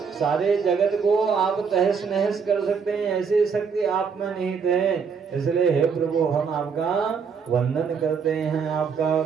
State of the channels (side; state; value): left; quieter; 6.1 dB